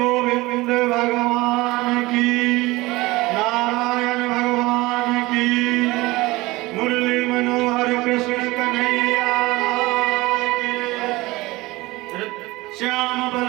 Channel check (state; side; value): quieter; left; 20.8 dB